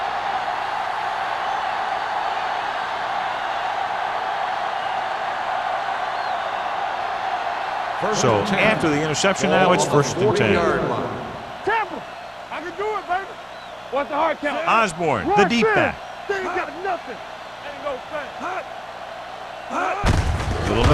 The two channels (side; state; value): both; identical; correlation 1.00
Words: So after the interception, now it's 1st and 10. Tampa, I can do it, baby. What's the hard count? Osborne, the deep back. They ain't got nothing. Ain't no thing. Little